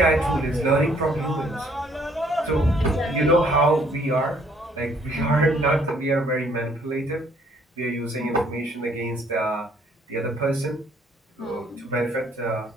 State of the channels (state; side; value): normal; both; correlation 0.63